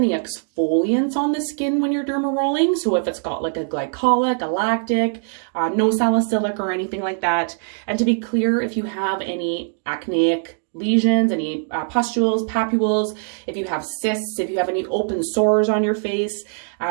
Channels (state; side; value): silent; left; digital silence